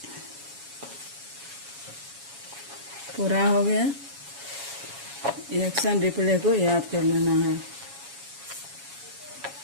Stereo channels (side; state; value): left; late; 7.2 ms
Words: पूरा हो गया। इलेक्शन रिप्ले को याद कर लेना है।